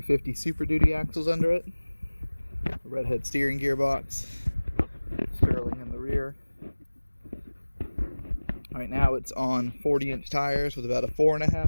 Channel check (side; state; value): both; inverted; correlation -1.00